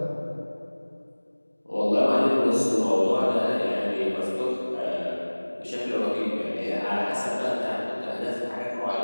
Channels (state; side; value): inverted; both; correlation -1.00